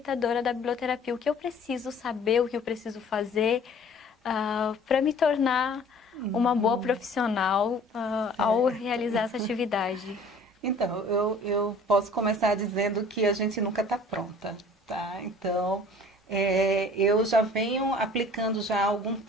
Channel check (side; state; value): both; normal; correlation 0.50